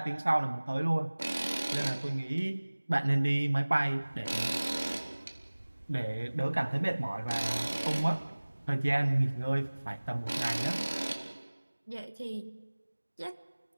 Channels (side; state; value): both; inverted; correlation -1.00